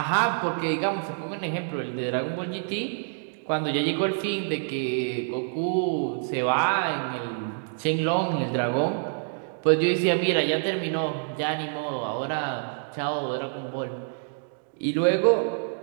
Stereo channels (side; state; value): left; silent; digital silence